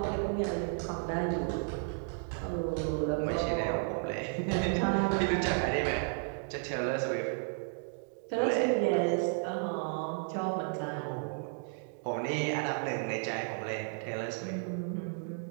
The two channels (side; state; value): left; silent; 56 dB below the other